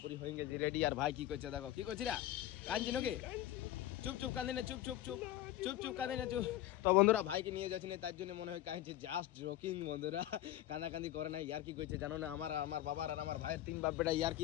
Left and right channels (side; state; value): right; quieter; 13.8 dB